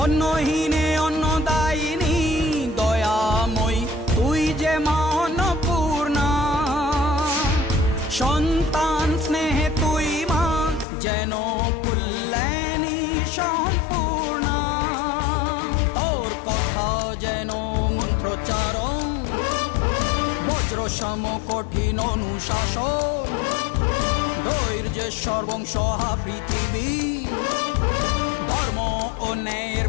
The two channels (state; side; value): drops out; right; at 10.9 s